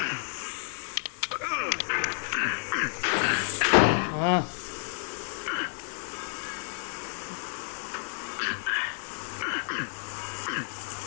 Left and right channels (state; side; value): silent; right; digital silence